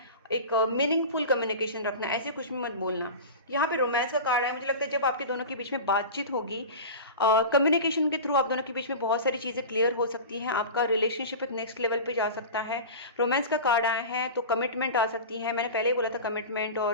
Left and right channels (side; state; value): both; inverted; correlation -0.30